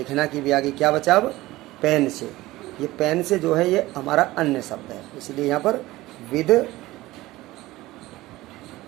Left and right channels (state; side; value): quieter; left; 18.1 dB